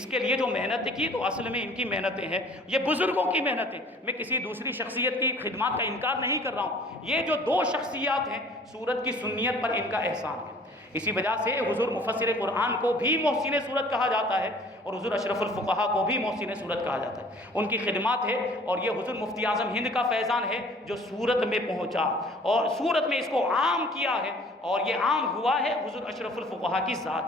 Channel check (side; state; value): both; normal; correlation 0.51